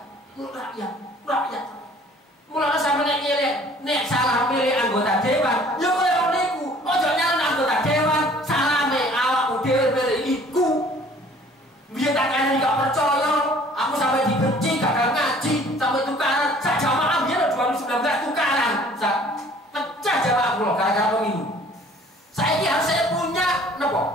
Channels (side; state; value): both; normal; correlation 0.53